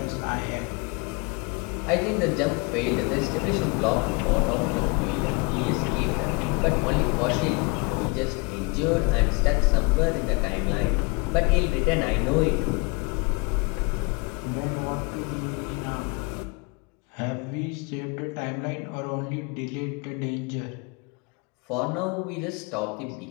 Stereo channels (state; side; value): quieter; right; 30.5 dB